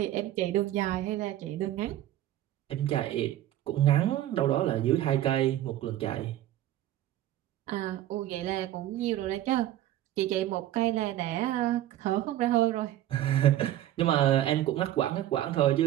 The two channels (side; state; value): left; quieter; 13.3 dB